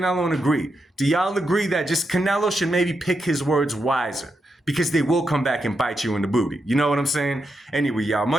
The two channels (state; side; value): normal; both; correlation 0.85